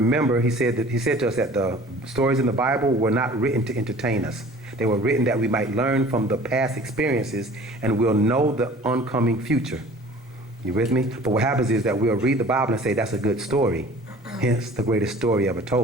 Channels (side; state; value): both; normal; correlation 0.47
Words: he said to us that the stories in the Bible were not written to entertain us. They were written that we might learn from the past experiences and we'll know the oncoming future. You with me? But what happens is that we'll read the Bible and say that's a good story, hence the greatest story ever